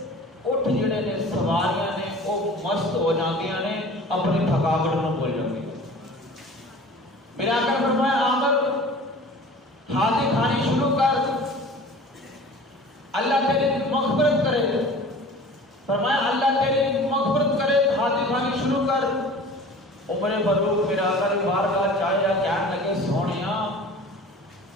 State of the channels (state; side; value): normal; both; correlation 0.42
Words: اٹھ جڑے نے سواریاں نے وہ مست ہو جاندیاں نے، اپنی تھکاوٹ نو بھول جاندی۔ میرے آقا نے فرمایا عامر ہاتھی خانی شروع کر، اللہ تیری مغفرت کرے۔ فرمایا اللہ تیری مغفرت کرے، ہاتھی خانی شروع کر۔ عمر فاروق میرے آقا نے بارگاہ چاہیا کہنے لگے سونیا